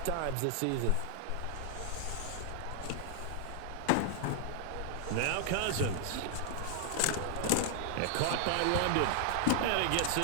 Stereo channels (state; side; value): different; both; correlation 0.00